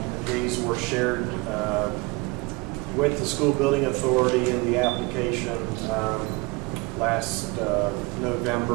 These were shared with the school building authority in the application last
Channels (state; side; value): quieter; left; 26.2 dB